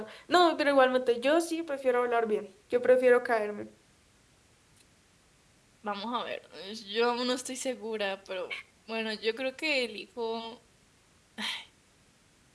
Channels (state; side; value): identical; both; correlation 1.00